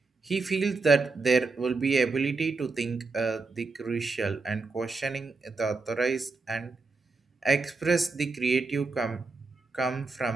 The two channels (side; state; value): left; quieter; 4.0 dB